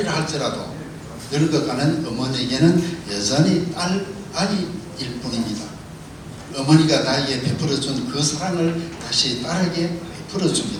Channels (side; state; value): both; identical; correlation 1.00